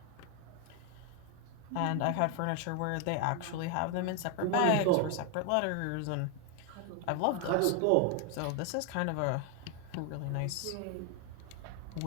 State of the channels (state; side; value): different; both; correlation 0.01